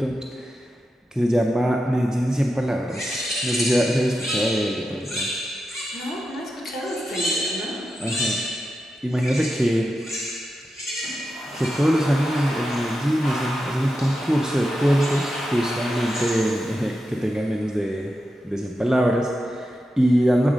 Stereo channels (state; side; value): normal; both; correlation 0.89